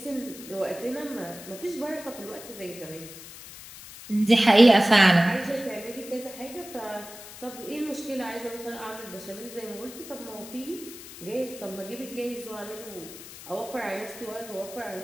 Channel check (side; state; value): left; noise; hiss, 15 dB below the sound